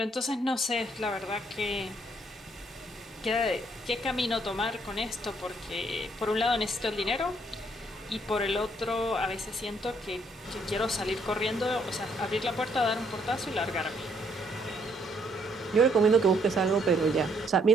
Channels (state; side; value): normal; both; correlation 0.68